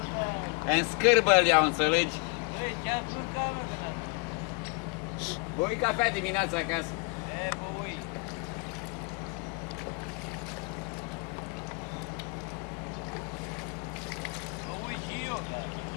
În scârbă îl iau, înțelegi? Băui cafea dimineața acasă. Băui. Băui și eu, da.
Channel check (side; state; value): right; quieter; 33.4 dB